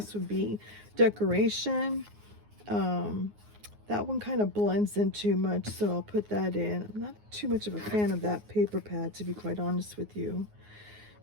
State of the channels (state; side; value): late; left; 9.6 ms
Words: would be decoration. That one kind of blends in too much, so I'll put that in. I'm not too much of a fan of that paper pad, to be quite honest with you.